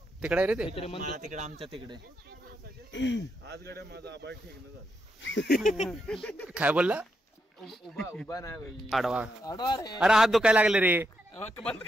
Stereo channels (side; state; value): both; normal; correlation 0.82